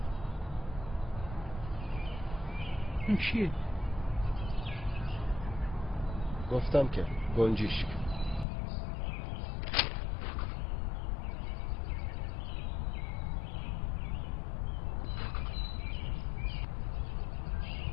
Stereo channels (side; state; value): right; drops out; at 8.5 s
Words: اون چیه؟ گفتم که گنجشک.